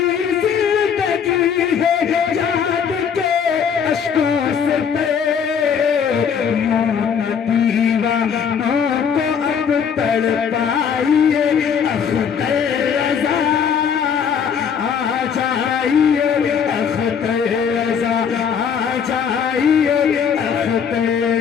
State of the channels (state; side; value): quieter; right; 7.2 dB